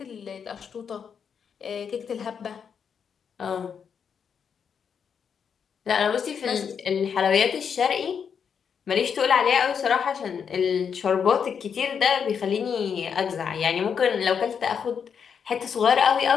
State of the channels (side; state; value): right; quieter; 7.0 dB